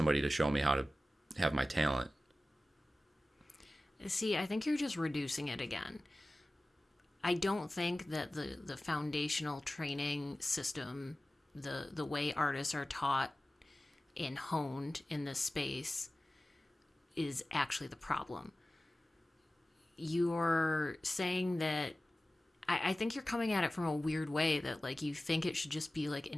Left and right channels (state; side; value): normal; both; correlation 0.96